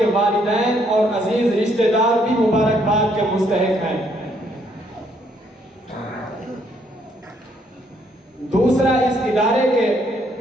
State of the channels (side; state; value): both; normal; correlation 0.70